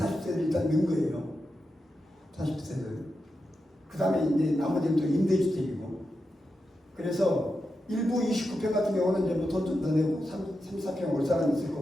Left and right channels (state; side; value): normal; both; correlation 0.88